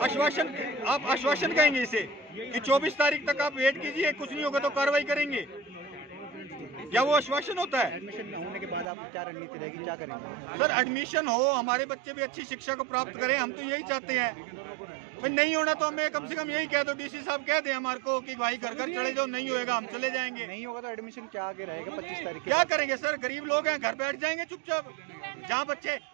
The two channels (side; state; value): left; drops out; at 8.8 s